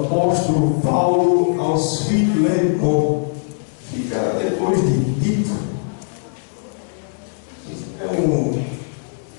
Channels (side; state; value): right; silent; digital silence